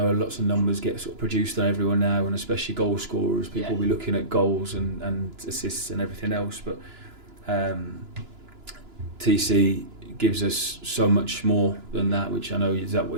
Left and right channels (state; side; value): late; left; 2.9 ms